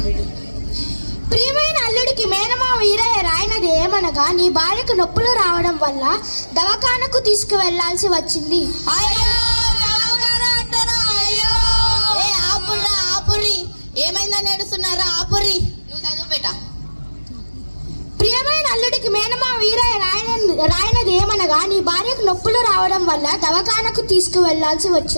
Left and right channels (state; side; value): inverted; both; correlation -1.00